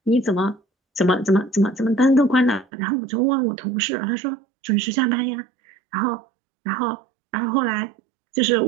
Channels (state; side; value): drops out; left; at 2.7 s